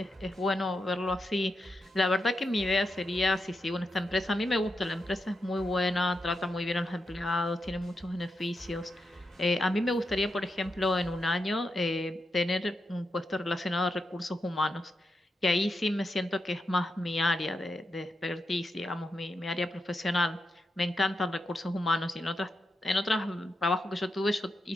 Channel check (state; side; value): normal; both; correlation 0.86